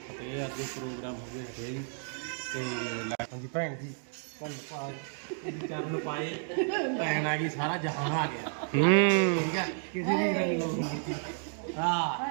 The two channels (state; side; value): silent; left; 57 dB below the other